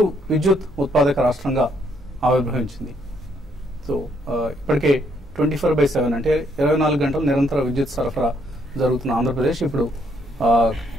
విద్యుత్ ఉత్పాదక రాష్ట్రంగా ఆవిర్భవించింది. సో ఇప్పటికే 24/7 అంటే 24 గంటలు నిరంతర విద్యుత్ సరఫరా జరుగుతున్న ఆంధ్రప్రదేశ్ ఇప్పుడు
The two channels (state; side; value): noise; right; hum, 30 dB below the sound